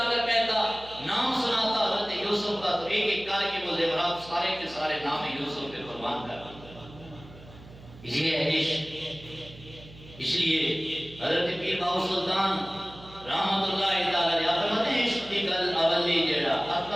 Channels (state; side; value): noise; right; hum, 19 dB below the sound